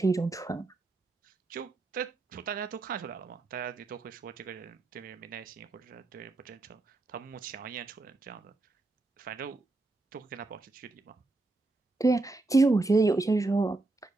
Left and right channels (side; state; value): left; quieter; 3.1 dB